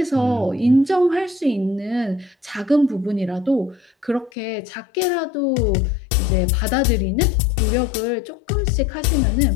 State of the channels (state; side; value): drops out; right; at 4.3 s